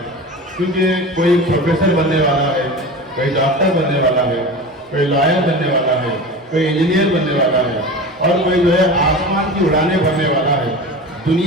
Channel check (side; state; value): both; normal; correlation 0.31